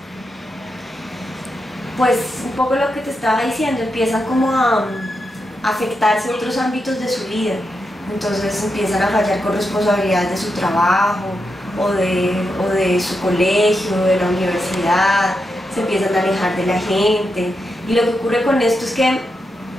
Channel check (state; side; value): normal; both; correlation 0.86